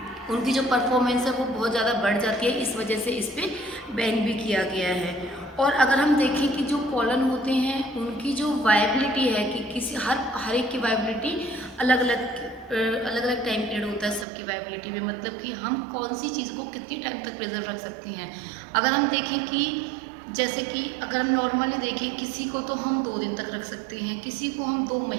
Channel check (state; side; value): drops out; left; at 14.2 s